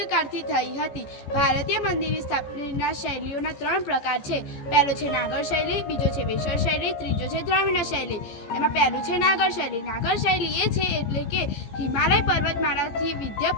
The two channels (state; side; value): late; right; 15 ms